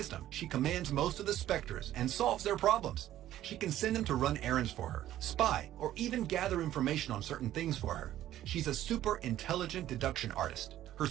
she commands most of the specters and solves their problems. She can send them to run errands for her, spy, or even gather information on certain things for her. She's a super intelligent deduction artist. Her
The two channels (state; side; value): quieter; left; 13.0 dB